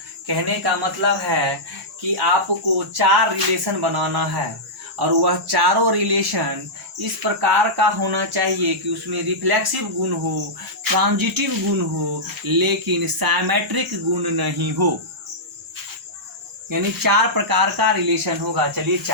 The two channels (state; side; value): normal; both; correlation -0.12